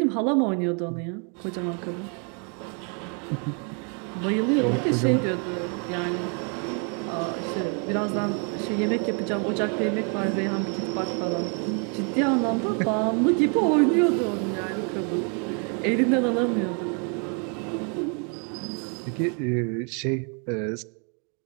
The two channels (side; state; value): left; quieter; 38.7 dB